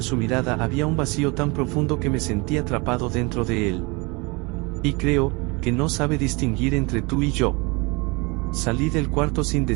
su mirada había un vacío tan profundo que me sentí atrapado dentro de él. Y creo que no sabe distinguir entre tú y yo. Salí del cuarto sin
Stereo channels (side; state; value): left; quieter; 27.4 dB